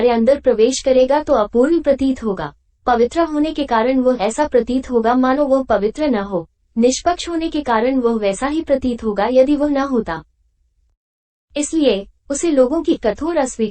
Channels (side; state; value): both; identical; correlation 1.00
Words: अंदर प्रवेश करेगा तो अपूर्ण प्रतीत होगा। पवित्र होने के कारण वह ऐसा प्रतीत होगा मानो वह पवित्र न हो। निष्पक्ष होने के कारण वह वैसा ही प्रतीत होगा यदि वह न होता। इसलिए उसे लोगों की कठोर